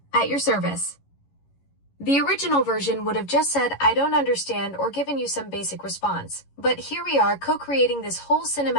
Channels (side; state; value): right; late; 11 ms